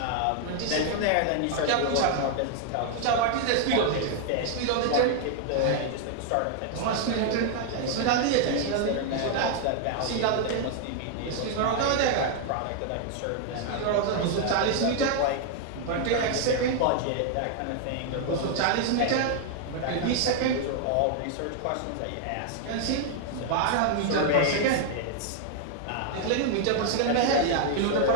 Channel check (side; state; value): both; different; correlation 0.00